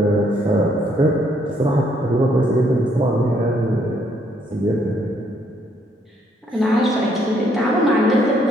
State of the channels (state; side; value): normal; both; correlation 0.69